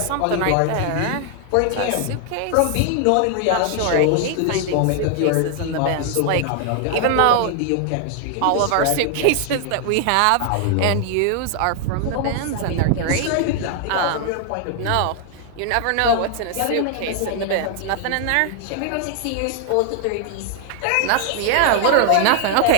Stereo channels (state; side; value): different; both; correlation 0.00